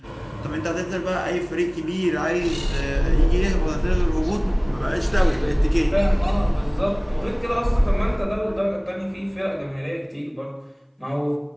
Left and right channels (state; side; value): identical; both; correlation 1.00